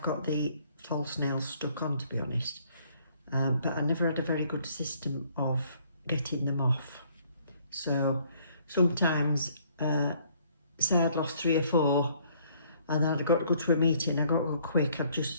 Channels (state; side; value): inverted; both; correlation -0.63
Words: got the false nails stuck on, to be honest. But I never had a very good system of getting them off. So sometimes, say I'd lost 3 or 4 and then I'd got to go to a meeting, I got to go quick, I'd